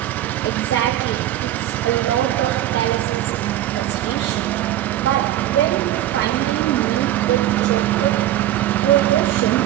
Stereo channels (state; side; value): quieter; left; 13.2 dB